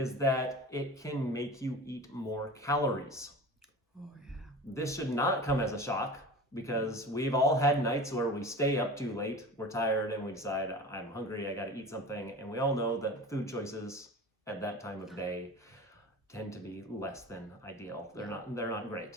that it can make you eat more calories. Oh yeah. This should not come as a shock, because we've all had nights where we stay up too late, we're tired, and we decide, I'm hungry, I gotta eat something, and we all know that food choices at that time of day tend to be less than ideal. They're not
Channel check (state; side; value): normal; both; correlation 0.35